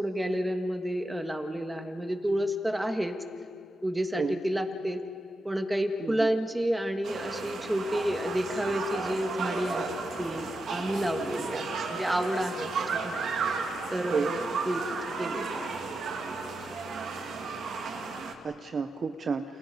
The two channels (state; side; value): normal; both; correlation 0.88